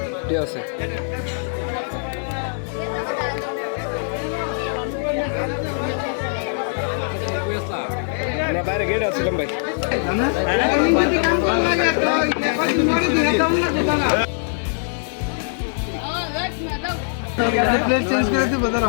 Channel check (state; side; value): silent; right; digital silence